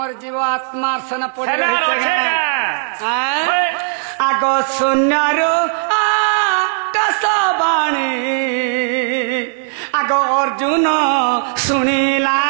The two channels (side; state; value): left; silent; digital silence